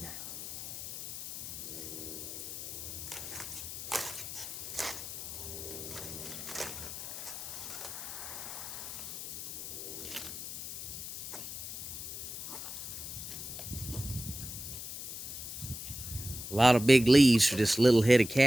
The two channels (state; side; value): noise; left; hiss, 8 dB below the sound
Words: A lot of big leaves for this little head of